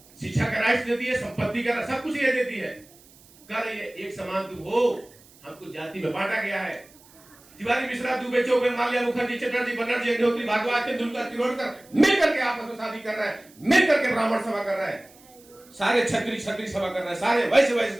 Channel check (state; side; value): noise; right; hiss, 26 dB below the sound